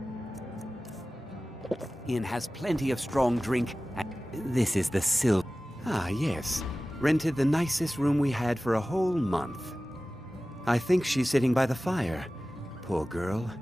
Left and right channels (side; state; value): both; normal; correlation 0.96